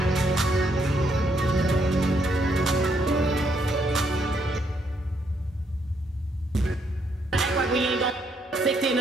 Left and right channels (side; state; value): both; normal; correlation 0.73